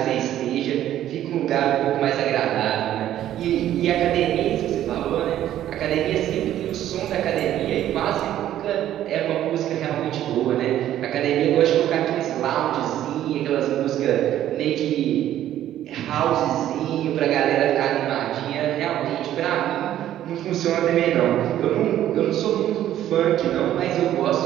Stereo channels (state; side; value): quieter; left; 12.1 dB